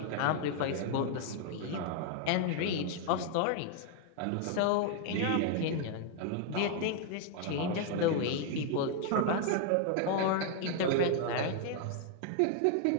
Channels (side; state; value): both; different; correlation 0.00